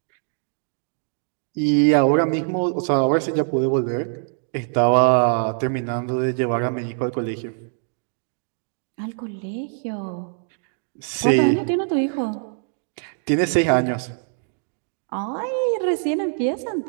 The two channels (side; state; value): left; silent; digital silence